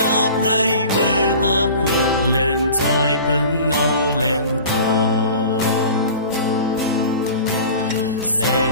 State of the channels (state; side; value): inverted; both; correlation -0.40